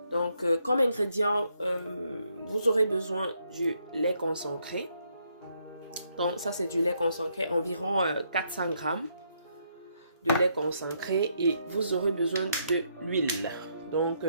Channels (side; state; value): both; inverted; correlation -0.74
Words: Donc comme ingrédient, vous aurez besoin du lait concentré. Donc ça c'est du lait concentré, environ 400 grammes de lait concentré, et vous aurez besoin de l'huile. Donc